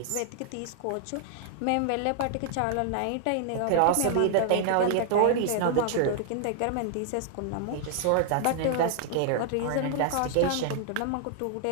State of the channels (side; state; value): both; different; correlation 0.00